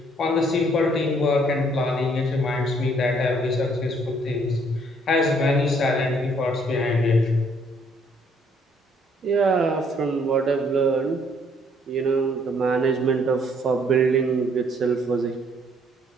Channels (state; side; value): normal; both; correlation 0.65